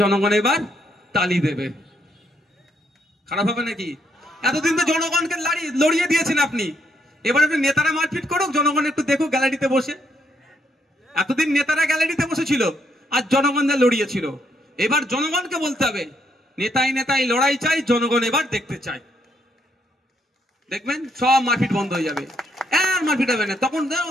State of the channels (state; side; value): normal; both; correlation 0.75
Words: জনগণ এবার তালি দেবে। খারাপ হবে নাকি? এতদিন তো জনগণকে লড়িয়ে দিয়েছেন আপনি, এবার একটু নেতারা মারপিট করুক, জনগণ একটু দেখুক গ্যালারিতে বসে। এতদিন নেতারা গ্যালারিতে বসেছিল আর জনগণদের লড়িয়েছিল, এবার জনগণকে বলতে হবে নেতাই নেতাই লড়াই চাই, জনগণ এবার দেখতে চাই। দেখবেন সব মারপিট বন্ধ হয়ে যাবে, আর মারপিট হবে না। তখন